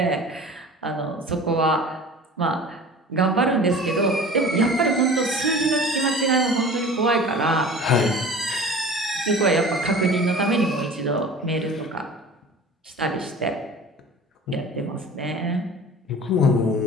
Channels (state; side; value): normal; both; correlation 0.41